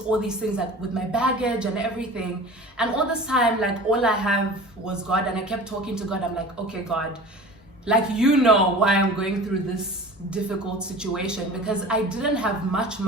all these things like with my baggage and everything. And all this time, like all I have was God, and I kept talking to God. I'm like, okay, God, like, you know why I'm going through this difficult situation, because I didn't have much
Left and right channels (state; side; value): normal; both; correlation 0.39